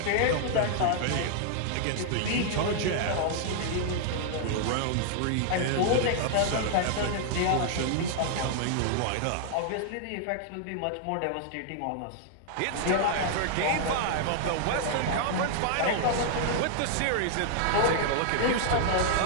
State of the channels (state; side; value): different; both; correlation -0.01